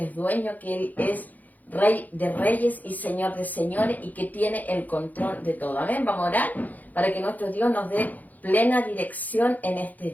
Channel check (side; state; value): right; late; 0.081 ms